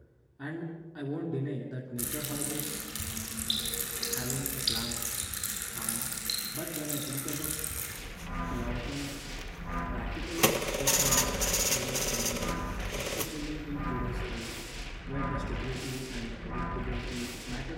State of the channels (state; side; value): identical; both; correlation 1.00